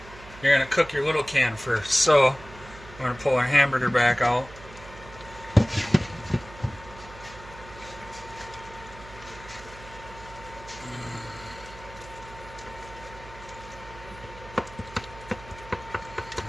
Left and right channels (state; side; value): noise; right; hum, 17 dB below the sound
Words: you're going to cook your little can first. So we're going to pull our hamburger back out.